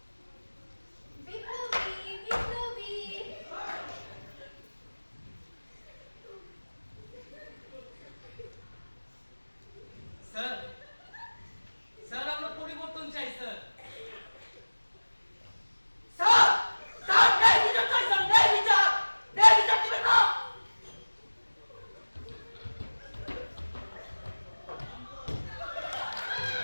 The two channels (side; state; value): both; inverted; correlation -1.00